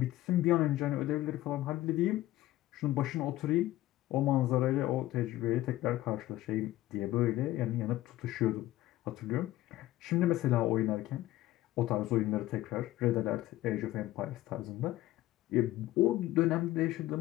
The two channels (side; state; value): right; quieter; 15.6 dB